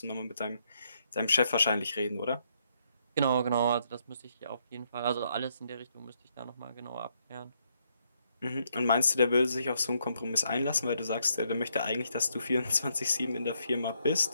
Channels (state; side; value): inverted; both; correlation -0.75